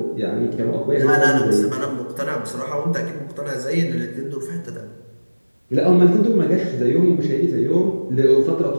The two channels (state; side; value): inverted; both; correlation -1.00